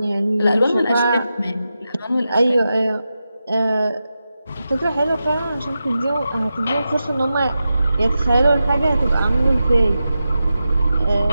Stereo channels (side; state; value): both; inverted; correlation -0.90